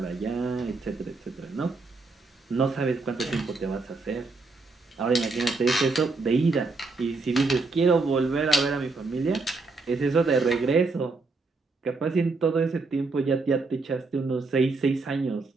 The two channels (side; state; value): left; quieter; 3.7 dB